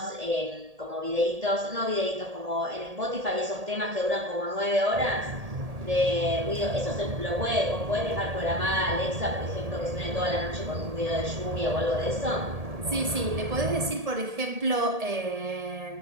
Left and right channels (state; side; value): late; left; 1.8 ms